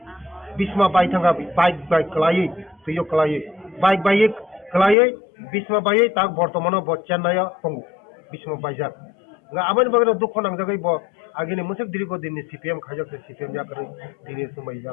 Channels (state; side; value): drops out; right; at 5.0 s